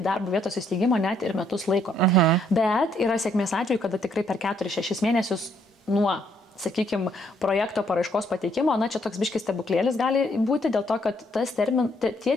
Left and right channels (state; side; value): normal; both; correlation 0.70